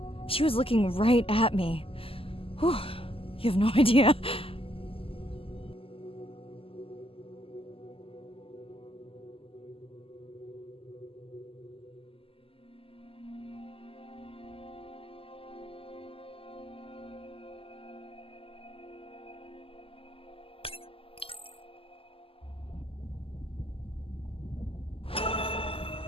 She was looking right at me. Whew, you have no idea.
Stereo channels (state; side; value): late; right; 0.26 ms